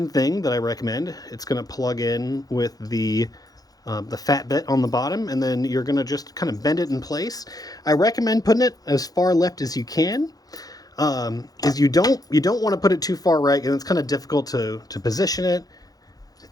thing that I recommend. It's going to plug in with the fat bit on the bottom, and then you're going to just kind of bend it in place. I recommend putting it as far left as you can. Is you don't want to put it too far right, and it's kind of difficult to position it,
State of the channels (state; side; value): late; right; 0.18 ms